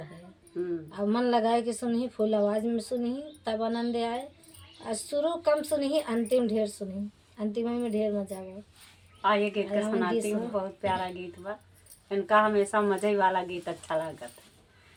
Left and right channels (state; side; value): identical; both; correlation 1.00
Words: अब मन लगाए कि सुनी, फुल आवाज़ में सुनी तब आनंद आए। और शुरू कम सुनी, अंतिम ढेर सुनी, अंतिम में ढेर मजा आए। आइए गीत का सुनाती हूँ। बहुत प्यारा गीत बा। इनका हमेशा मजे वाला गीत अच्छा लगता है।